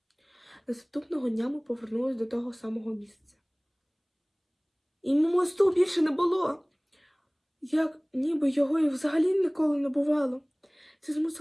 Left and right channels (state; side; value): identical; both; correlation 1.00